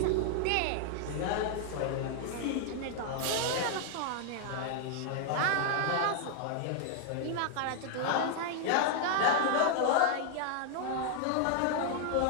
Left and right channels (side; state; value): both; different; correlation -0.01